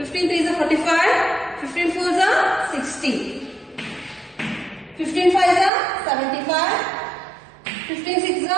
threes are 45, 15 fours are 60. 15 fives are 75, 15 sixes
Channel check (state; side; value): drops out; left; at 5.7 s